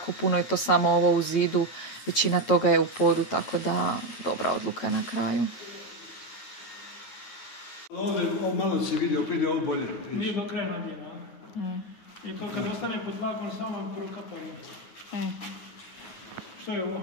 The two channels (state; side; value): late; right; 9.4 ms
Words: puno je to samo ovo u zidu, većina toga je u podu, tako da dobra odluka na kraju. Ovdje malo se vidi, opet je ovo bolje. Nije do kraja nabijeno. I to kad ostane pod tlakom samo prokapaju. Što je ovo?